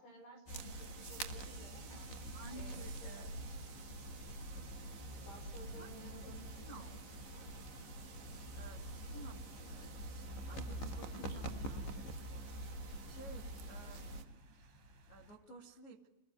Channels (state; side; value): late; right; 15 ms